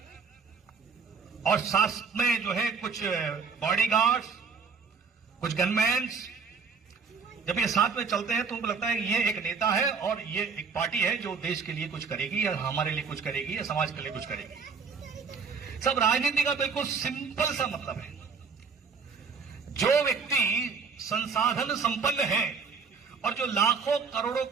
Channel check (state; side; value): quieter; left; 5.3 dB